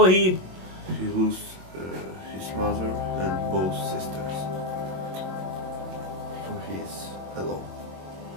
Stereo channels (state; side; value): late; left; 22 ms